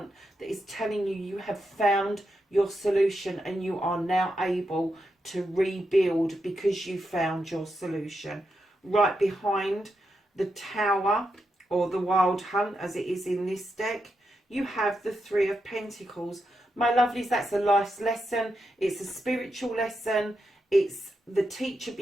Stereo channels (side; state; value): both; normal; correlation 0.85